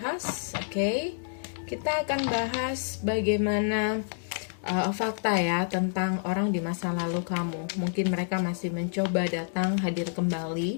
kita akan bahas bagaimana fakta ya tentang orang di masa lalu kamu. Mungkin mereka masih mencoba datang hadir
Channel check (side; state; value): right; silent; digital silence